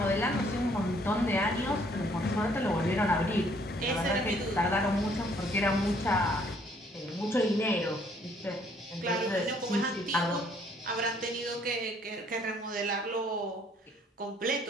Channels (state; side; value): normal; both; correlation 0.63